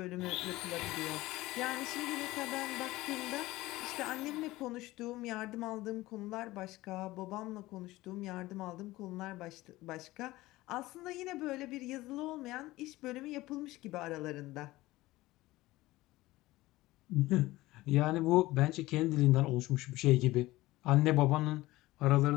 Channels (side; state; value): right; quieter; 18.4 dB